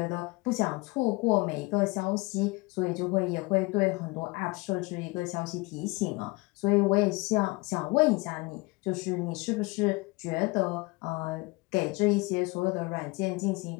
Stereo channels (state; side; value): quieter; right; 24.8 dB